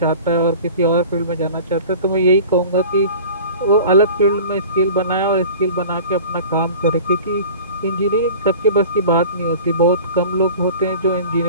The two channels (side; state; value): both; inverted; correlation -0.41